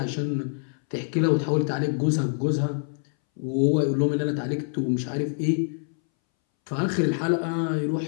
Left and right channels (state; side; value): silent; right; 61 dB below the other